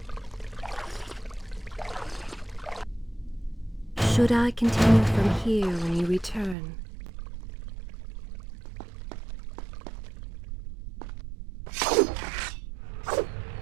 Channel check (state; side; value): drops out; left; at 6.6 s